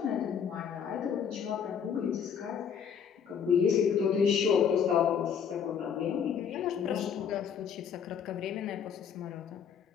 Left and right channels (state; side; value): quieter; right; 7.6 dB